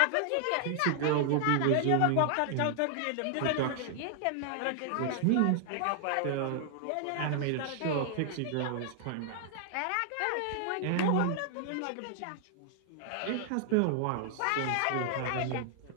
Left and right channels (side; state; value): both; different; correlation 0.00